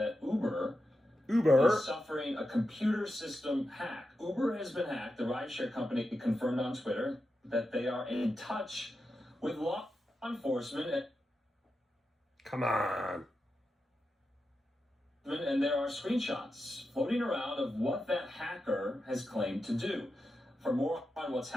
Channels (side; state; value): both; normal; correlation 0.89